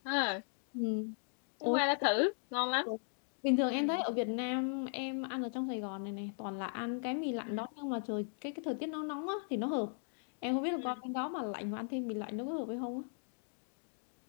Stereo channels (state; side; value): silent; right; digital silence